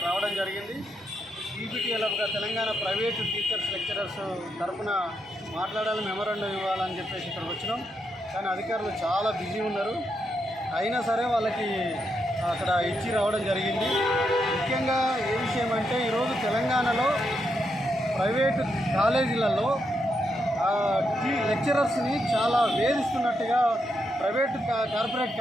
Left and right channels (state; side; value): normal; both; correlation 0.82